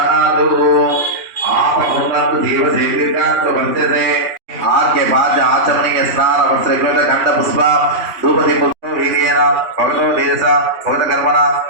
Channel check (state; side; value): late; left; 3.1 ms